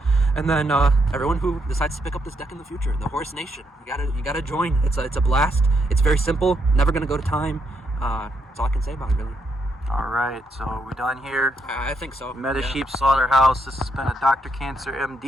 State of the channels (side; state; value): both; normal; correlation 0.78